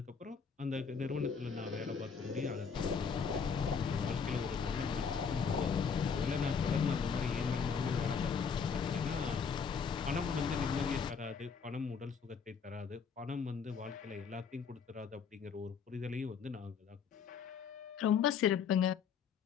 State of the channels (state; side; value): quieter; right; 6.2 dB